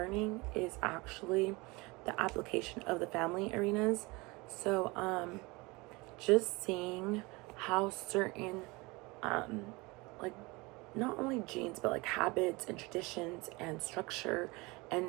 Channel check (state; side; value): quieter; left; 24.6 dB